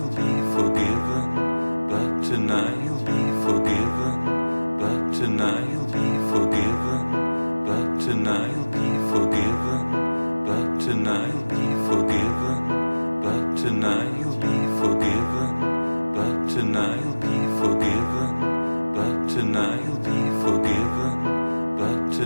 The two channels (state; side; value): inverted; both; correlation -1.00